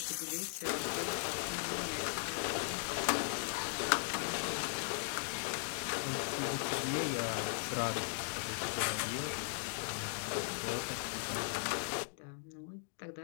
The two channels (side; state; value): right; silent; digital silence